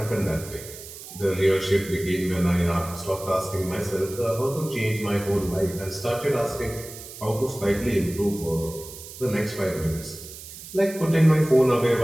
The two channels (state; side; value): noise; right; hiss, 14 dB below the sound